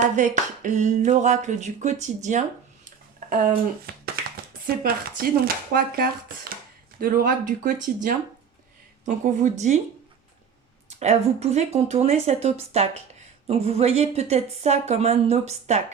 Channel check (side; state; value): left; quieter; 7.0 dB